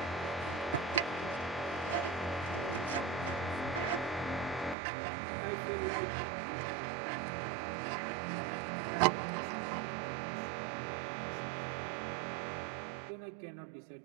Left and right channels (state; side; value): drops out; left; at 4.8 s